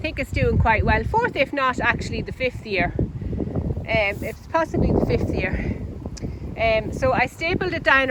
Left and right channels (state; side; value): identical; both; correlation 1.00